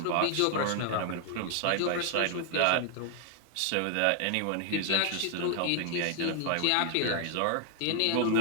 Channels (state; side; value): different; both; correlation 0.00